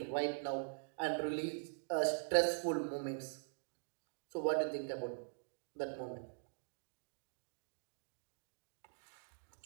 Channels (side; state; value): left; silent; digital silence